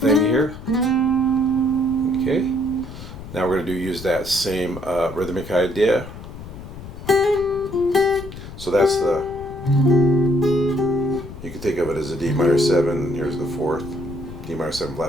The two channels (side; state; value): left; noise; rumble, 13 dB below the sound